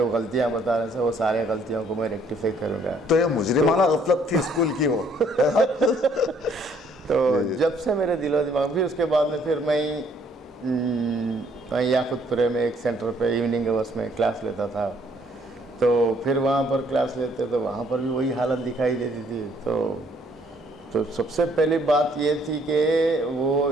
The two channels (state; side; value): normal; both; correlation 0.64